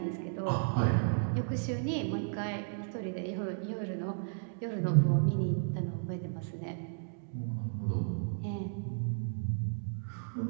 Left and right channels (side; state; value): left; silent; digital silence